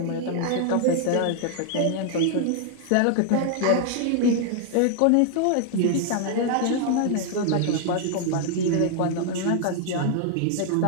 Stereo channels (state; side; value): different; both; correlation 0.00